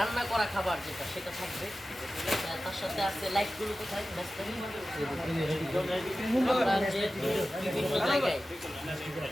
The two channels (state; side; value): normal; both; correlation 0.94